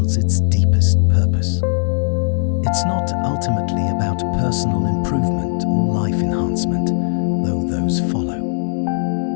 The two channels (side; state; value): right; silent; digital silence